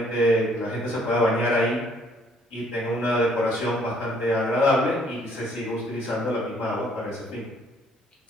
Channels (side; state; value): both; normal; correlation 0.63